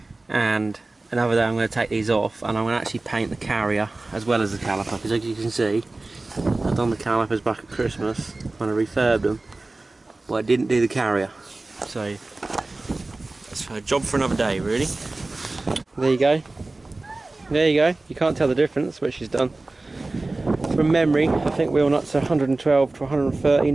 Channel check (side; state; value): left; quieter; 3.1 dB